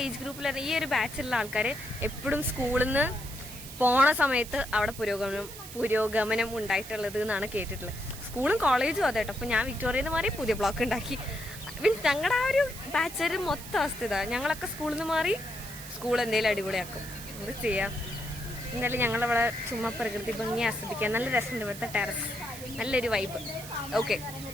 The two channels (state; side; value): noise; right; hiss, 13 dB below the sound